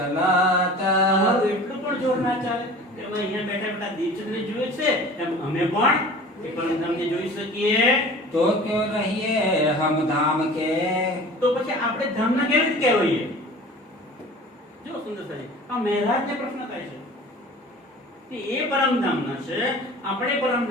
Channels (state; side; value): normal; both; correlation 0.42